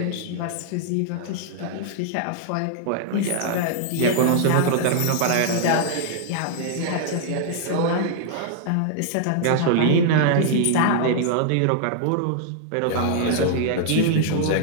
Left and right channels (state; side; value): different; both; correlation -0.01